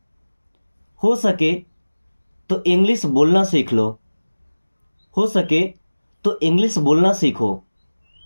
हो सके तो इंग्लिश बोलना सीख लो, हो सके तो इंग्लिश बोलना सीखो।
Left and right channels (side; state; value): both; inverted; correlation -1.00